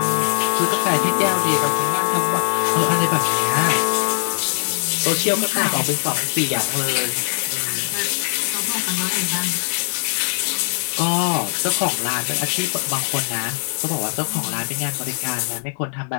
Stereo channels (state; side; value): silent; right; 65 dB below the other